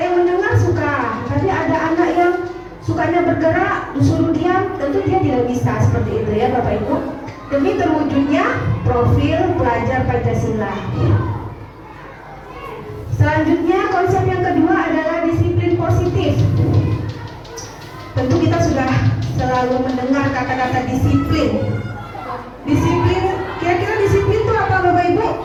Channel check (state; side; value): identical; both; correlation 1.00